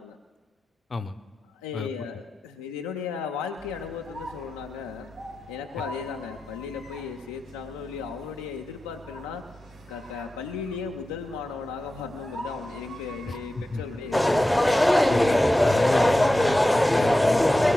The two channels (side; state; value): both; normal; correlation 0.93